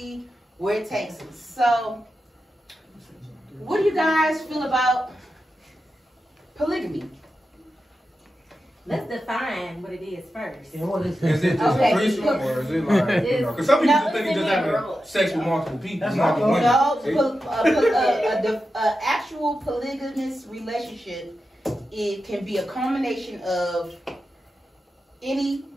where it takes us. So, what do you guys feel about polygamy? Let's define what it is first. Is it just a threesome, or is it like, because some people think it's just having sex with multiple people, multiple women. No, actual polygamous relationship, it can be a combination of any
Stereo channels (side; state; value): both; normal; correlation 0.90